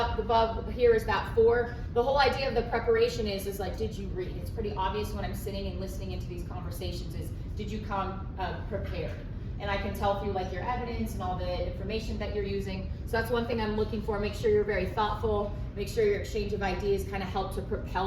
above, here is that 4. The whole idea of the preparation is like, did you read? It's pretty obvious when I'm sitting and listening into these conversations is, did you come prepared? And I can tell through like your evidence and all the information that you're using. So that's one thing I'm looking for. Make sure you're very thoughtful. Make sure your exchange of ideas kind of help to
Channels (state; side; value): identical; both; correlation 1.00